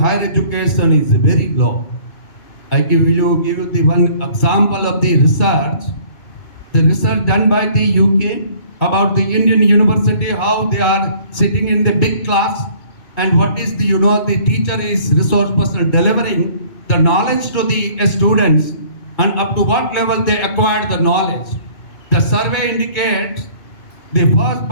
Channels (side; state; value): right; late; 2.2 ms